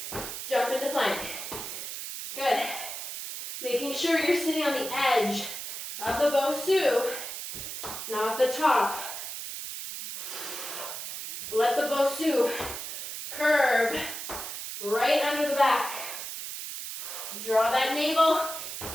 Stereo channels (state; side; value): noise; right; hiss, 7 dB below the sound